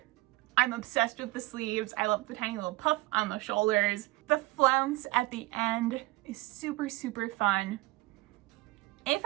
I'm obsessed with the sleeves. I love the tiny little puff on the shoulders. The flounce at the end is super, super fun. If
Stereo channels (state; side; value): quieter; left; 21.1 dB